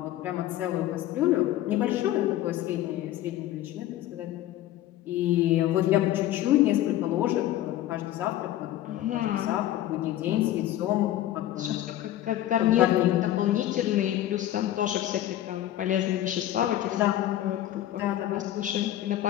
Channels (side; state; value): right; quieter; 13.3 dB